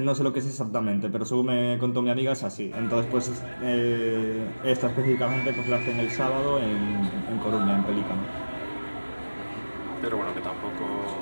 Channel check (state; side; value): inverted; both; correlation -1.00